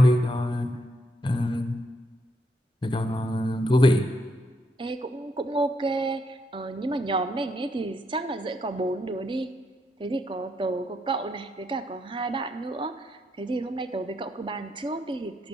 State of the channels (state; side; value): normal; both; correlation 0.77